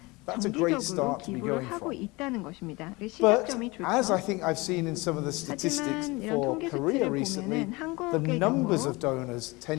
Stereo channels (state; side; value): quieter; right; 24.1 dB